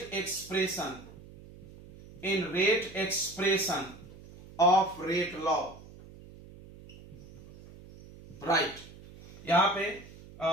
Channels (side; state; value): right; noise; hum, 19 dB below the sound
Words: expression of rate law, right? यहां पे